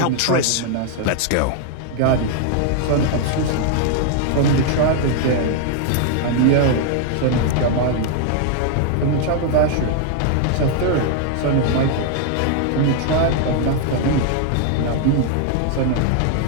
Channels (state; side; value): different; both; correlation 0.00